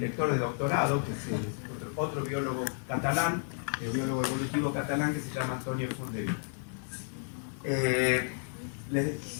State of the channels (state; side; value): silent; right; digital silence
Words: de doctorado, que es otro biólogo catalán, biólogo evolutivo catalán, que se llama Antonio Fondevila.